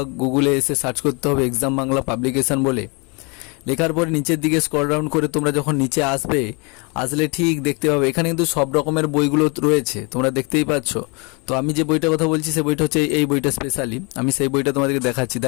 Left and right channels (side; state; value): right; quieter; 31.2 dB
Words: গুগলে এসে সার্চ করতে হবে এক্সাম বাংলা পাবলিকেশন বলে। লেখার পরে নিচের দিকে স্ক্রল ডাউন করে তোমরা যখন নিচে আসলে ঠিক দেখতে পাবে এখানে কিন্তু সব রকমের বইগুলো রয়েছে, তোমরা দেখতেই পাচ্ছ। তো আমি যে বইটার কথা বলছি সেই বইটা হচ্ছে এই বইটা স্পেশালি, আমি সেই বইটা তোমাদেরকে দেখাচ্ছি।